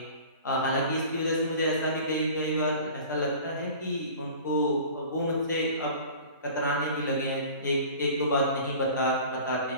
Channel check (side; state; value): both; inverted; correlation -0.42